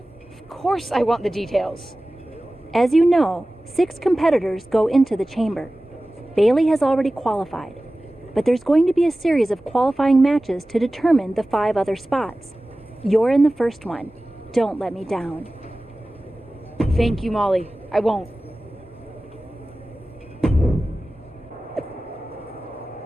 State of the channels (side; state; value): both; normal; correlation 0.97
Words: Of course I want the details. As you know, 6 competitors go into the chamber. Bailey has already qualified, but there's going to be a series of qualifying matches to determine the 5 other spots. You're in the first one. Don't let me down. Thank you, Molly. I won't.